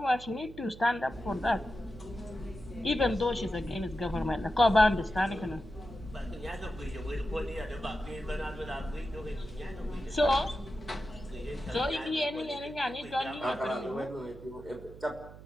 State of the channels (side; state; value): right; noise; hum, 16 dB below the sound